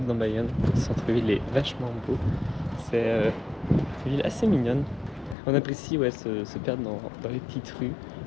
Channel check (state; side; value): drops out; right; at 5.4 s